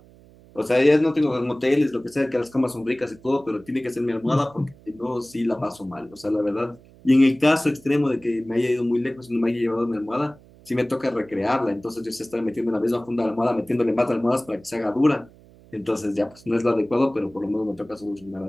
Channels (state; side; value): noise; right; hum, 25 dB below the sound